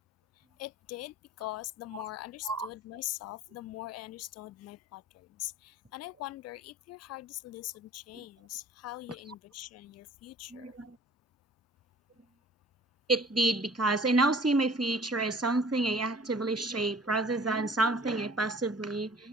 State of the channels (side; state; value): both; normal; correlation 0.50